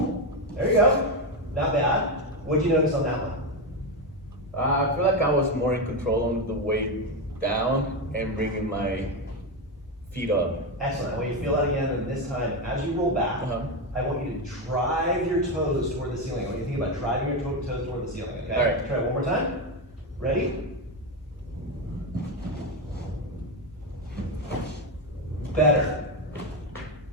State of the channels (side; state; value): both; normal; correlation 0.11